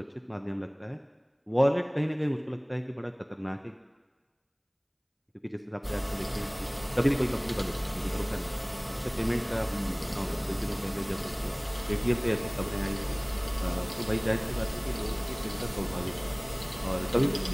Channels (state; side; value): identical; both; correlation 1.00